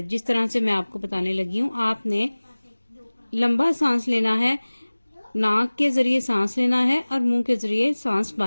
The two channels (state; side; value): inverted; both; correlation -1.00